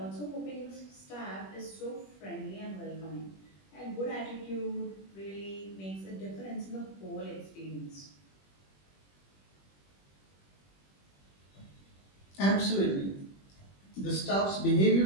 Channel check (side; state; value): right; late; 21 ms